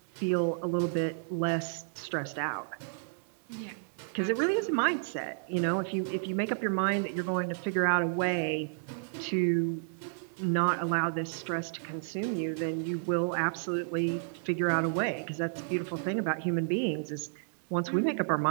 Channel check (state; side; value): silent; left; 57 dB below the other